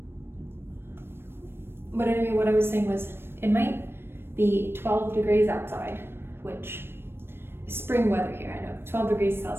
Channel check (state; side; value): late; left; 0.11 ms